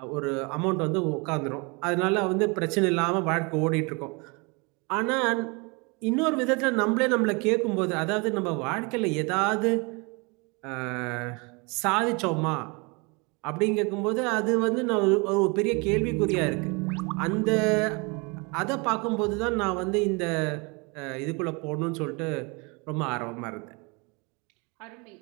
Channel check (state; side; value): quieter; left; 29.7 dB